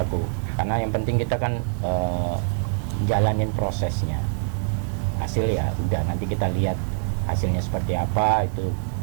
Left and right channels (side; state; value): left; silent; 62 dB below the other